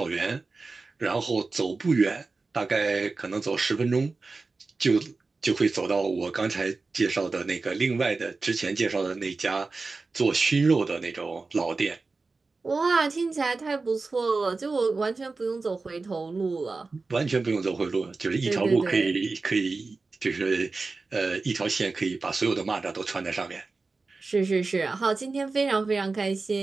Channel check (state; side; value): quieter; left; 3.9 dB